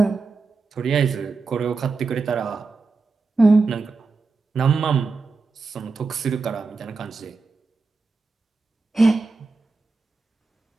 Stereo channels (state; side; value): quieter; left; 4.1 dB